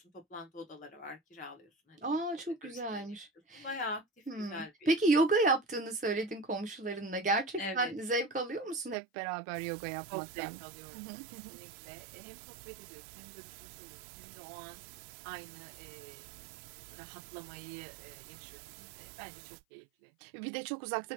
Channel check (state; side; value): drops out; left; at 9.0 s